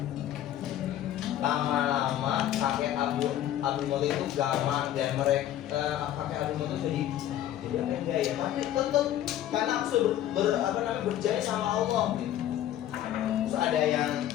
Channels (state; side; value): quieter; right; 12.1 dB